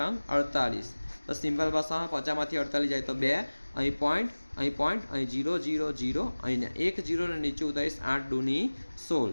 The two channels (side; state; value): both; inverted; correlation -1.00